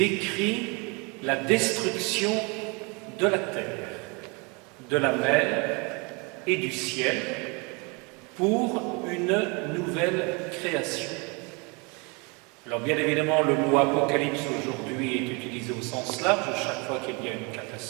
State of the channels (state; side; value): quieter; left; 30.4 dB